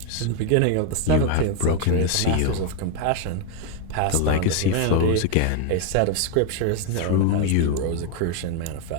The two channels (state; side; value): different; both; correlation 0.01